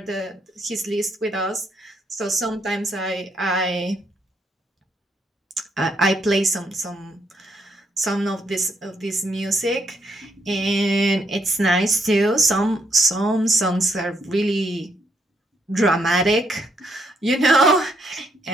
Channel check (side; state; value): both; normal; correlation 0.75